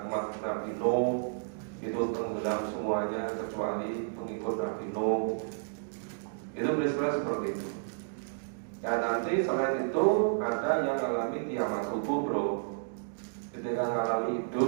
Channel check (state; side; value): silent; left; digital silence